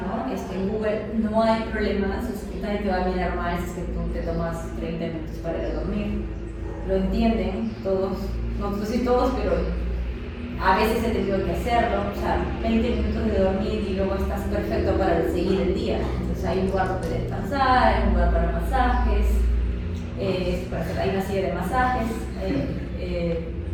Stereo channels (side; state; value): both; identical; correlation 1.00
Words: En Google no hay problemas, nadie te va a mirar mal si es que tú te tomas 30 minutos para ir a dormir. Lo entienden todos. No sé si todos, pero a veces he tenido que hacerlo, o sea, 20 minutos de dormir y luego estás perfecto para seguir el día. Entonces hay un lugar donde descansar, hay un lugar para masajes, hay una silla de masajes.